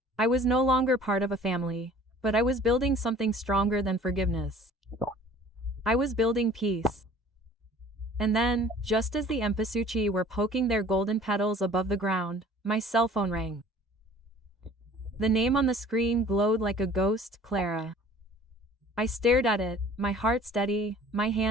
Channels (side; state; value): both; normal; correlation 0.50